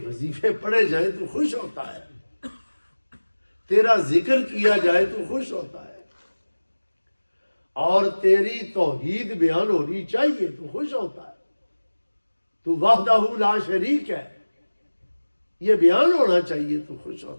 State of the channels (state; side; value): inverted; both; correlation -1.00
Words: وظیفے پڑھے جائیں تو خوش ہوتا ہے، تیرا ذکر کیا جائے تو خوش ہوتا ہے، اور تیری توحید بیان ہونی چاہیے تو خوش ہوتا ہے. تو وحدہ لا شریک ہے، یہ بیان ہونا چاہیے تو خوش